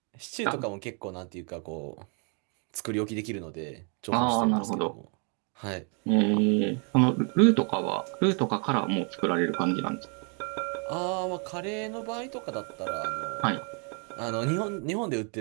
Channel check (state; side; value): quieter; left; 37.8 dB